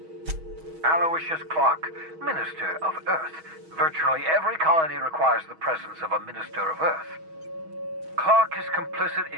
Aloysius Clark, Minister of Earth. Virtually every colony requires the presence of a Minister of Earth. Clark is complicit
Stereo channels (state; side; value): late; left; 6.3 ms